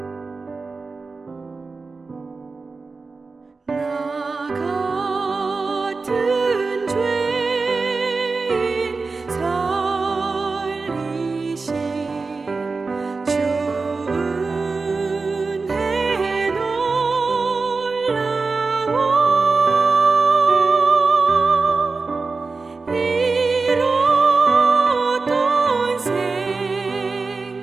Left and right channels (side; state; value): left; quieter; 4.1 dB